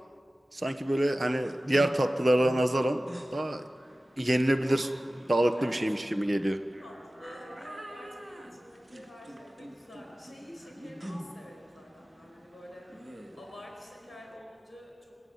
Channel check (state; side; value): normal; both; correlation 0.97